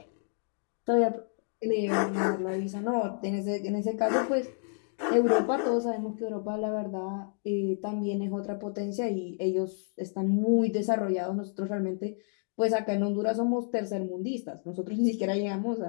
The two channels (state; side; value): silent; right; 58 dB below the other